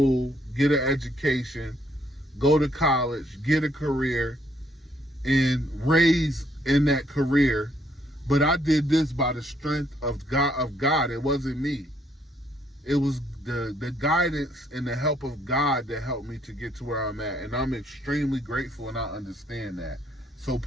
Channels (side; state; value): both; normal; correlation 0.69